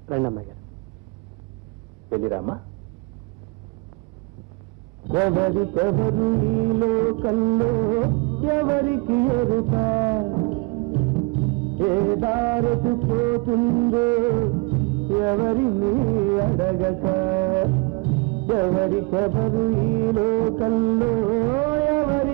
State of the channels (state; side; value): quieter; left; 27.6 dB